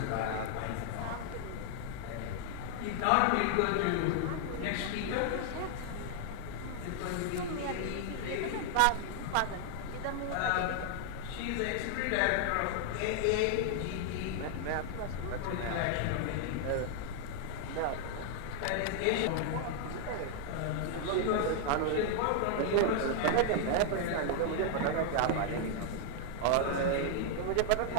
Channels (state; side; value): different; both; correlation 0.00